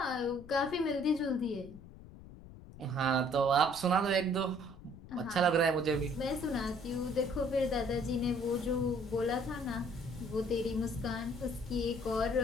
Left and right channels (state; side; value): noise; left; rumble, 17 dB below the sound